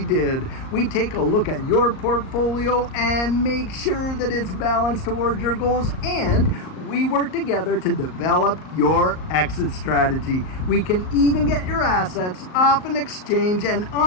did. We take a look at your portfolio and make sure that it's balanced towards your goals, and we work together to develop your exit strategy. We can even get your assets off an exchange and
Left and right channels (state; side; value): late; right; 38 ms